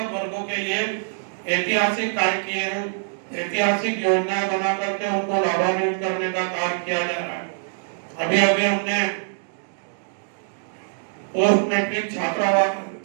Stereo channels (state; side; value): silent; left; digital silence